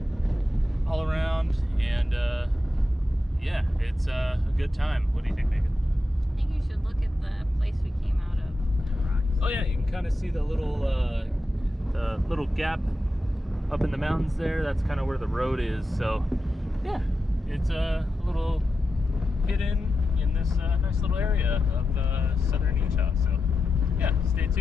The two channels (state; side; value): normal; both; correlation 0.89